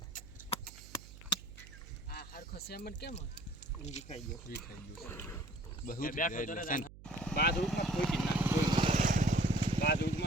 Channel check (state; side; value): noise; right; hum, 18 dB below the sound